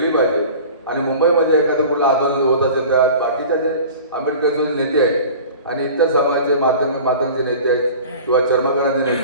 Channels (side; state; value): both; inverted; correlation -0.40